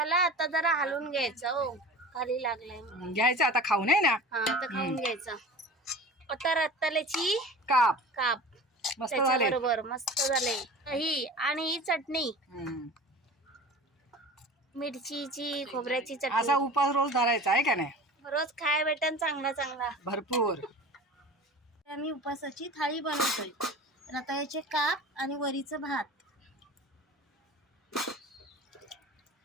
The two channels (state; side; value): normal; both; correlation 0.37